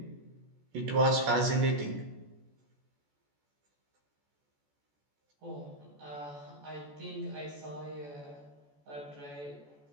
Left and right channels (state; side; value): late; left; 14 ms